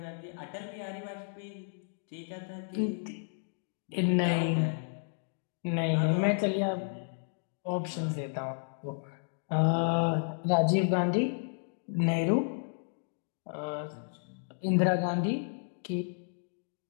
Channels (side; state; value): right; silent; digital silence